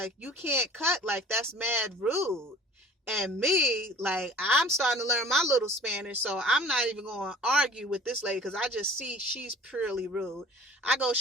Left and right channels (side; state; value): both; normal; correlation 0.48